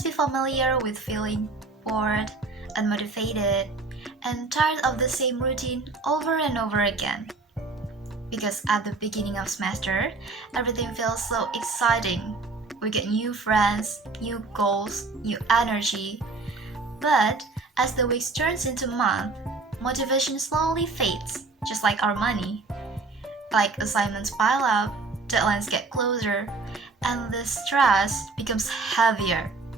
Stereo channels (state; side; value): quieter; left; 3.9 dB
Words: be familiar with feeling bored, unmotivated, and tired of the same routine over and over again. Because at the beginning of semester, everything feels so exciting. We get new friends, new goals, new energy. But as the weeks turns into months, motivation slowly fades, just like our money. Like assignments pile up, deadlines get closer, and the stress becomes heavier.